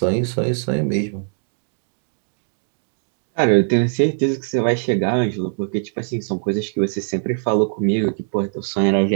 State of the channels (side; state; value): left; silent; digital silence